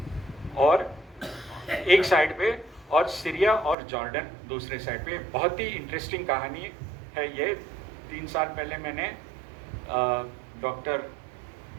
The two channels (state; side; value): drops out; left; at 3.8 s